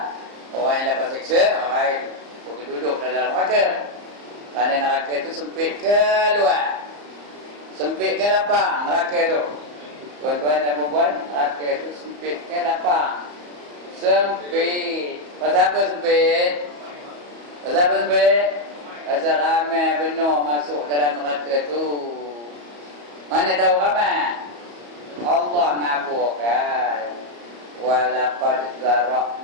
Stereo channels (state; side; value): late; left; 34 ms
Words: Orang yang dapat seksa, orang pergi duduk dalam neraka. Kerana neraka itu sempit ke luar, sempit ke lapang neraka itu. Tuan-tuan dan puan-puan, neraka itu sempit ke lapang? Sempit. Pasal apa sempit? Pasal apa sempit? Pasal ramai benar masuk dalam neraka itu. Mana tahu ramai? Allah ngaburkan. Walaqad